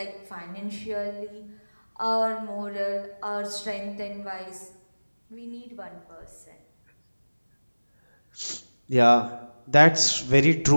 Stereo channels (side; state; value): both; inverted; correlation -1.00